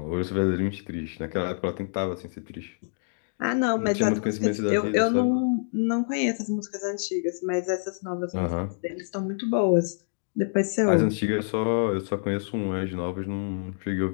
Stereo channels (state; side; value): silent; right; digital silence